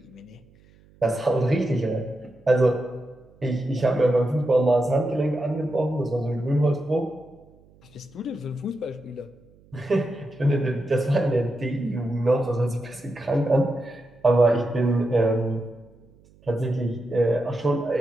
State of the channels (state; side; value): noise; right; hum, 29 dB below the sound